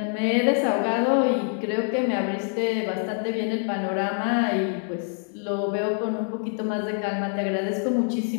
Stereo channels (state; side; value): silent; right; 58 dB below the other